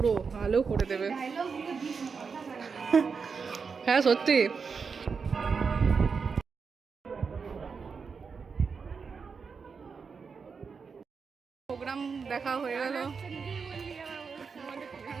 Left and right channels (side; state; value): left; quieter; 5.4 dB